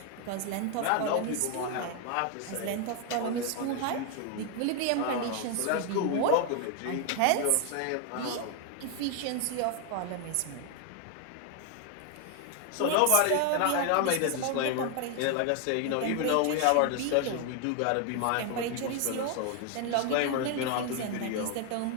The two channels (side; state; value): both; different; correlation 0.00